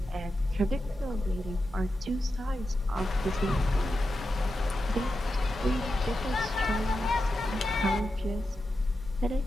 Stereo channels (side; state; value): both; normal; correlation 0.90